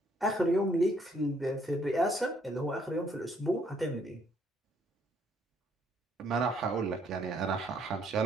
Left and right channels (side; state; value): both; normal; correlation 0.67